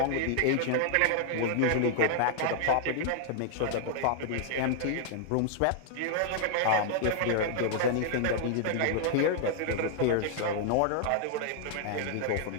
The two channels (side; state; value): both; different; correlation -0.01